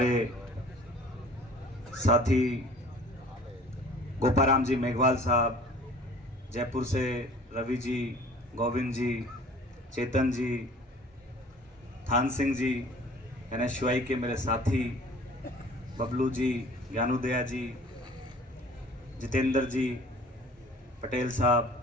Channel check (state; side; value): normal; both; correlation 0.48